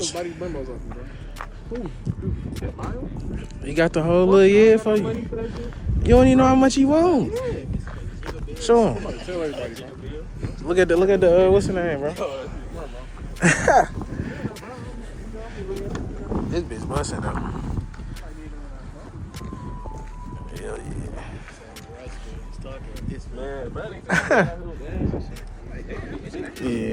Body Brembos off you, bro. He got the whole little year for you. You don't even know how much he want. Show him. Tell everybody, bro. Look at the what's the name, bro? This bitch busting though. Hell yeah.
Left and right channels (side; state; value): both; identical; correlation 1.00